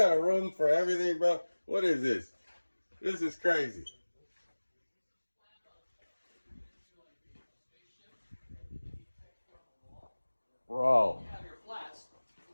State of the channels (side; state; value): both; inverted; correlation -1.00